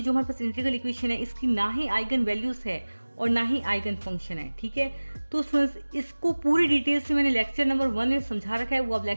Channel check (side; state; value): both; inverted; correlation -1.00